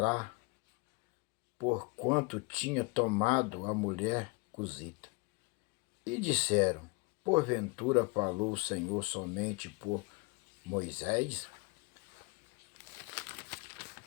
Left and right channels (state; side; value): quieter; right; 27.7 dB